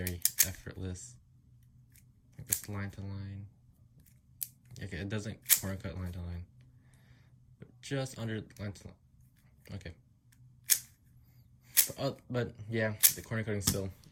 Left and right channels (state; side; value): identical; both; correlation 1.00